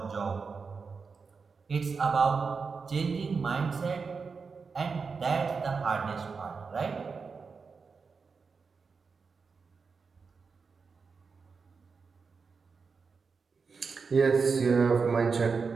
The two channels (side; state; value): left; quieter; 5.0 dB